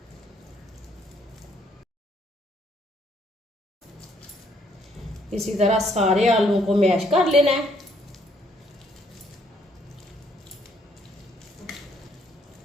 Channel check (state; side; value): normal; both; correlation 0.68